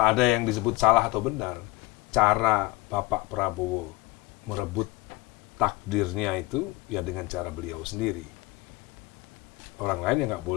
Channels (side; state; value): right; quieter; 21.4 dB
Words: yang disebut salah atau benar. Cara Bapak Prabowo merebut takdirnya itu ya dengan cara beliau sendiri. Orang lain ya nggak